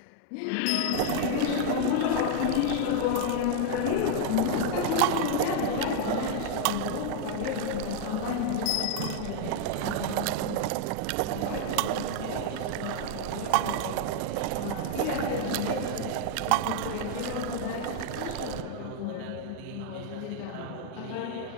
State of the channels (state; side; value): different; both; correlation 0.00